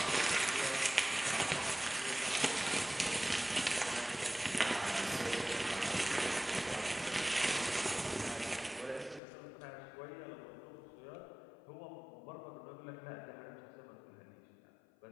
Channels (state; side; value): drops out; right; at 9.2 s